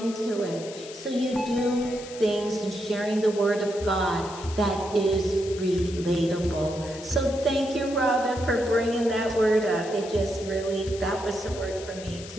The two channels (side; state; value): left; noise; hiss, 15 dB below the sound